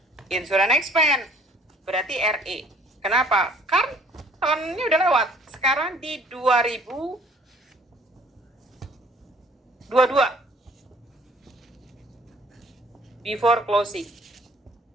Insurance expense. Berarti RE. Kenapa? Kan tahunnya udah lewat. Sekarang di 2022. Before closing.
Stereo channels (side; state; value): both; normal; correlation 0.56